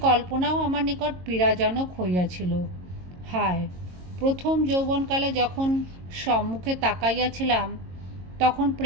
কল্পনাও আমার নিকট পীড়াজনক হইয়াছিল। হায়, প্রথম যৌবনকালে যখন সম্মুখে তাকাইয়াছিলাম, তখন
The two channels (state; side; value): late; left; 22 ms